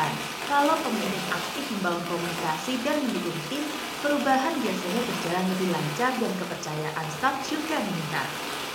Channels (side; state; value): both; identical; correlation 1.00